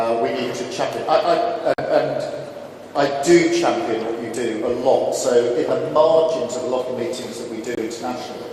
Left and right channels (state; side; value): identical; both; correlation 1.00